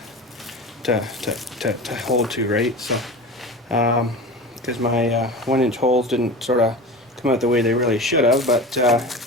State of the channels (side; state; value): both; normal; correlation 0.31